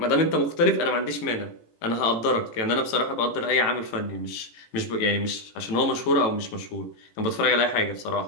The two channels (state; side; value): late; right; 18 ms